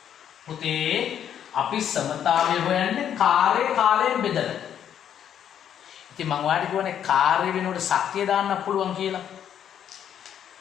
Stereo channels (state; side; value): quieter; right; 9.5 dB